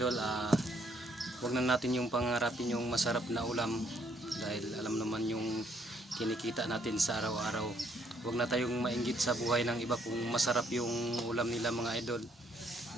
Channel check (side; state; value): both; normal; correlation 0.69